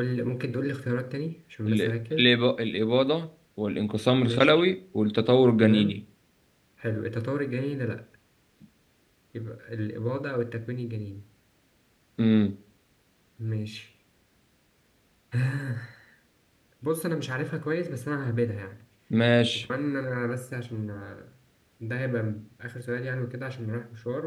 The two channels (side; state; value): both; identical; correlation 1.00